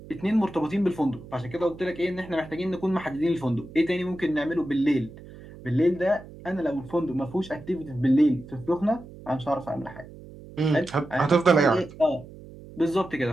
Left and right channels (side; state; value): right; noise; hum, 17 dB below the sound